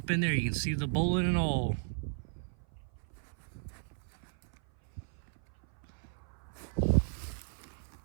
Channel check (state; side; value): silent; left; 54 dB below the other